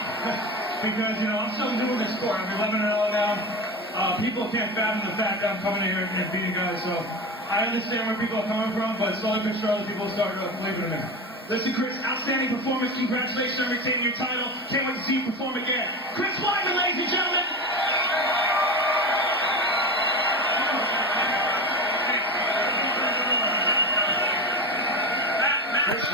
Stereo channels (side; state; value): both; normal; correlation 0.25